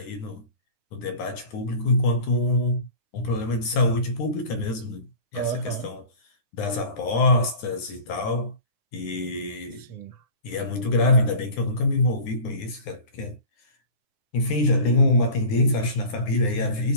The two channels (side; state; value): right; late; 9.7 ms